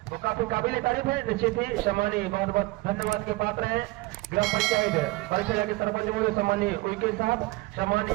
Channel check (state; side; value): quieter; left; 21.3 dB